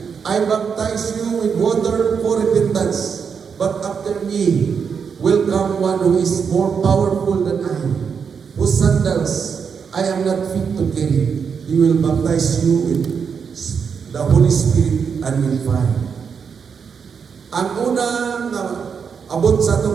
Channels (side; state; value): left; quieter; 6.4 dB